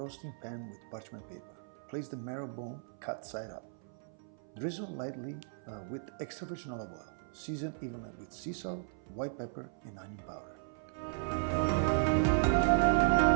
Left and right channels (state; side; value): silent; left; 54 dB below the other